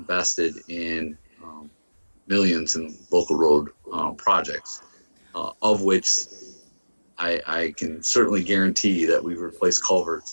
in millions in local road projects, of which I can certainly guarantee that we've replaced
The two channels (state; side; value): inverted; both; correlation -1.00